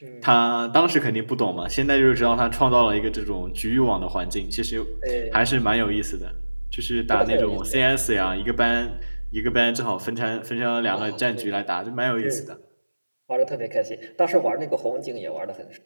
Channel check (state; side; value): inverted; both; correlation -1.00